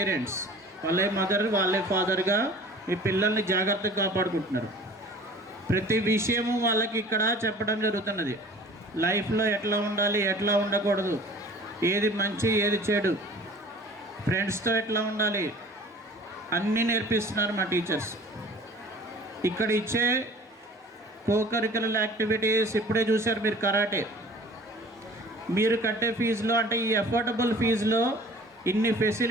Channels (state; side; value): normal; both; correlation 0.46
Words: వాళ్ళే మదర్, వాళ్ళే ఫాదర్గా మీ పిల్లల్ని జాగ్రత్తగా కాపాడుకుంటున్నారు. ప్రతి విషయము వాళ్ళకి ఇక్కడ చెప్పడం జరుగుతున్నది. లైఫ్లో ఎట్లా ఉండాలి, ఎట్లా ఉండకూడదు, ఏది మంచి ఏది చెడు, ఫ్రెండ్స్తో ఎట్లా ఉండాలి, అన్నీ నేర్పిస్తున్నారు మా టీచర్స్. ఇక్కడ ఇచ్చే కోకరికులర్ యాక్టివిటీస్ ఇప్పుడే చూశారు మీరు. కరాటే మీరు కట్టే ఫీజులో, అంటే ఈ అఫోర్డబుల్ ఫీజులో ఇన్ని